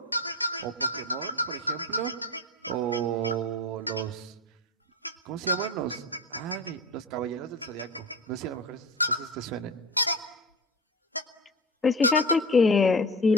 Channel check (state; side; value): normal; both; correlation 0.27